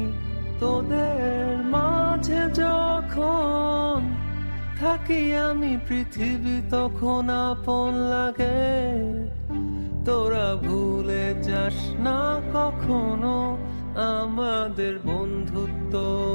তোদের মাঝে যখন থাকি আমি, পৃথিবী তখন আপন লাগে। তোরা ভুলে যাস না কখনো আমাদের বন্ধুত্ব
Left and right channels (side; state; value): both; inverted; correlation -1.00